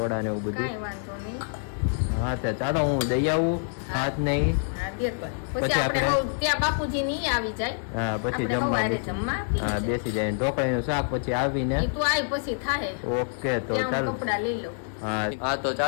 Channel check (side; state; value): right; silent; 60 dB below the other